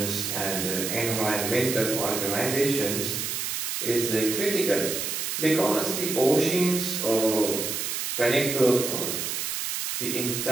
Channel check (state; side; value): noise; right; hiss, 2 dB below the sound